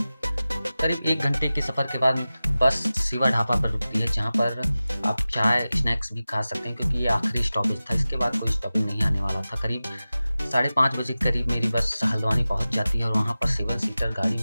करीब 1 घंटे के सफ़र के बाद बस शिवा ढाबा पर रुकती है, जहाँ पर आप चाय, स्नैक्स भी खा सकते हैं, क्योंकि ये आखिरी स्टॉपेज था। इसके बाद कोई स्टॉपिंग नहीं आने वाला था। करीब 5:30 बजे के करीब मेरी बस हल्द्वानी पहुँच जाती है और वहाँ पर 7 सीटर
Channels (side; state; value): both; inverted; correlation -0.96